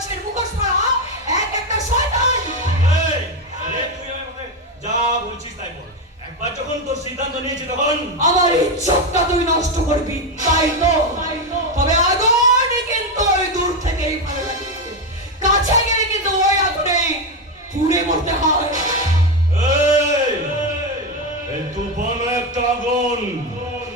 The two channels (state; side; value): normal; both; correlation 0.10